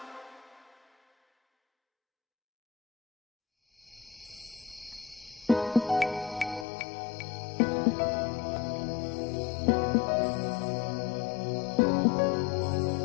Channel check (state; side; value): drops out; right; at 6.7 s